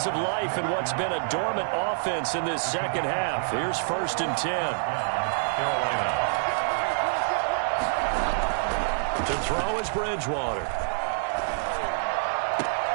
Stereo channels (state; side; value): silent; left; digital silence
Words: of life in what's been a dormant offense in this second half. Here's 1st and 10. To throw is Bridgewater.